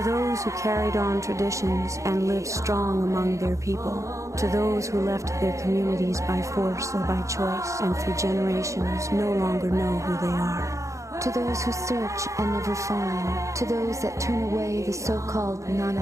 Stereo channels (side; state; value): left; late; 0.15 ms